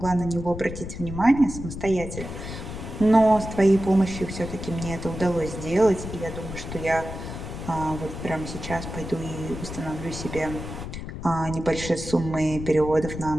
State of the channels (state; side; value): noise; left; rumble, 8 dB below the sound